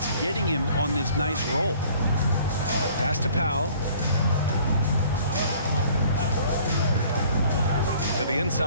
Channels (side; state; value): both; inverted; correlation -0.54